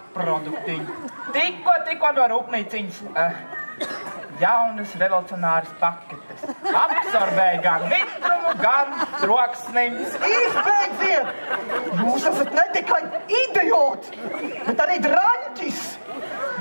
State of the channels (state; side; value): inverted; both; correlation -1.00